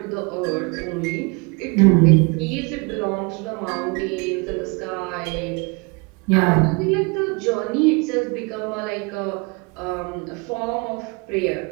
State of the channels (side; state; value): left; quieter; 29.5 dB